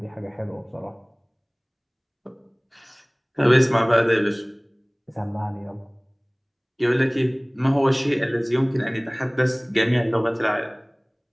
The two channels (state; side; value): identical; both; correlation 1.00